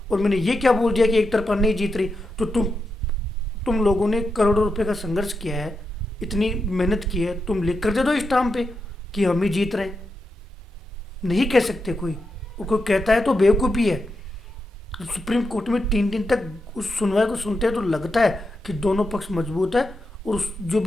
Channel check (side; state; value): both; normal; correlation 0.86